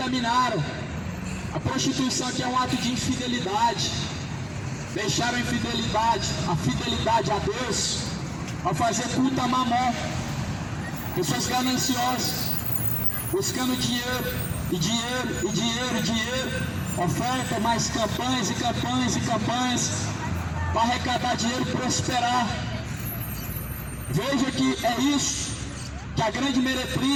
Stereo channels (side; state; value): both; identical; correlation 1.00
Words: A prostituição aqui é um ato de infidelidade. Deixaram a fidelidade a Deus, ao fazer culto a Mamon. Pessoas gananciosas, buscando dinheiro, e dinheiro, e dinheiro, e dinheiro. Oferta mais campanhas e campanhas e campanhas, para arrecadar dinheiro e prosperar. Veja que é isso que a grande